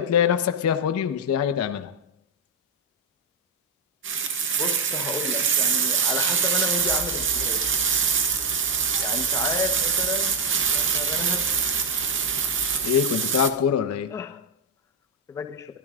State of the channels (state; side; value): normal; both; correlation 0.00